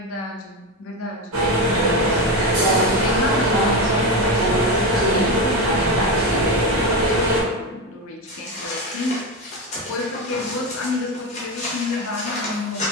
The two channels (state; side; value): normal; both; correlation 0.15